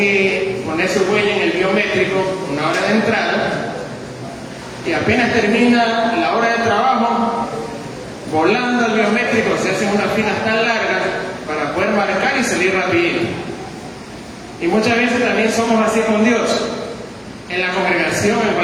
poner su huella en el biométrico una hora de entrada, y apenas termina la hora de trabajo, volando al biométrico se hacen unas filas tan largas para poder marcar y salir rapidito. Y muchas veces también somos así con Dios, en la congregación, en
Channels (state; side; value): identical; both; correlation 1.00